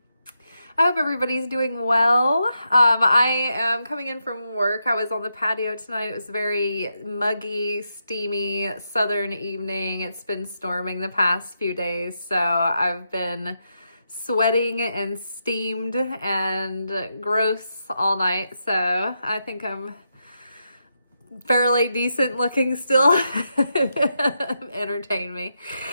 I hope everybody's doing well. I am coming in from work. I was on the patio tonight. It was very muggy, steamy, southern evening. It's been storming the past few days, so I've been sweating and steamed and gross all night. So I think I'm fairly decent looking still. Entertain me.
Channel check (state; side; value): inverted; both; correlation -0.84